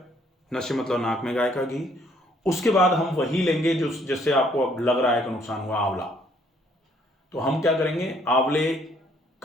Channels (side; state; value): both; normal; correlation 0.65